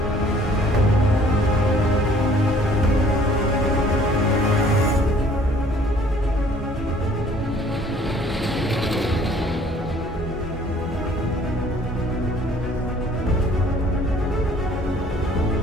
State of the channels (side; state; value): both; normal; correlation 0.56